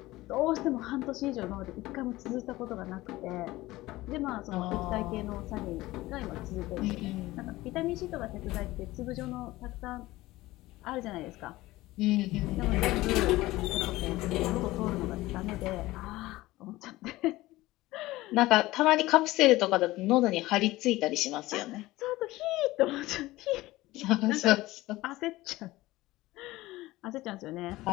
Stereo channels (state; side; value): quieter; right; 18.3 dB